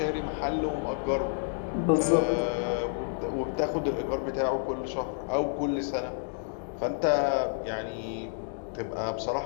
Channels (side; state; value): right; silent; digital silence